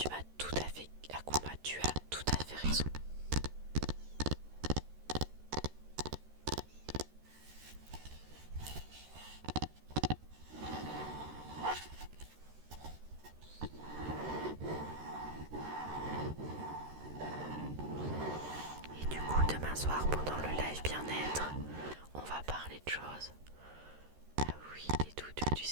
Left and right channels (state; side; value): late; left; 13 ms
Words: mat, tout à fait, Akuma, tu as tout à fait raison. Et du coup, demain soir, pendant le live bien-être, on va parler de choses. Ah oui, des doudous, du